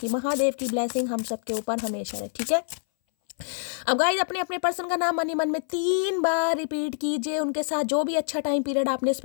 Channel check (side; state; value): right; silent; 59 dB below the other